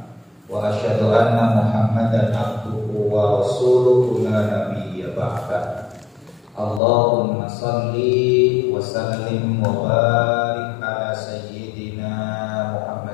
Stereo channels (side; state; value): right; drops out; at 6.8 s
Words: wa asyhadu anna Muhammadan abduhu wa rasuluhu la nabiyya ba'da. Allahumma salli wa sallim wa barik ala sayyidina